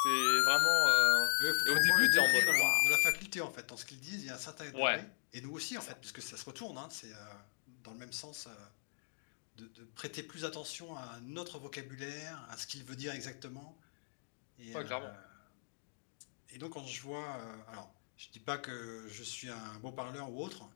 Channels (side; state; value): right; silent; digital silence